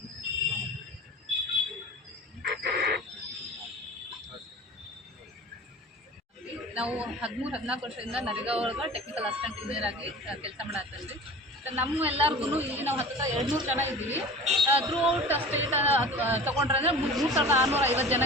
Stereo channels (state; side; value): normal; both; correlation 0.38